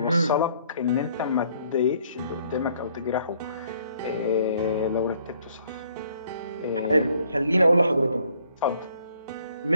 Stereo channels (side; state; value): both; inverted; correlation -0.63